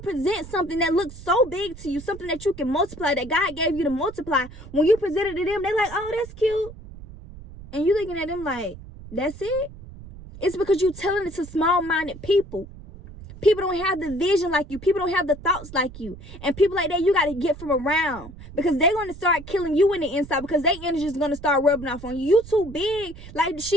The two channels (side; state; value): right; noise; rumble, 16 dB below the sound